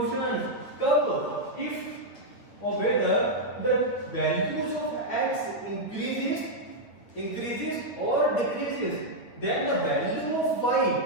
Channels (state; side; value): late; right; 8.6 ms